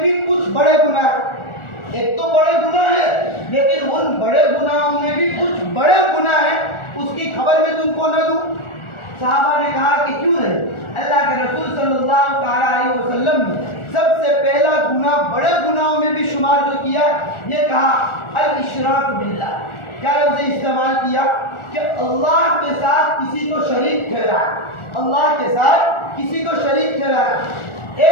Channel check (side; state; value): right; late; 1.4 ms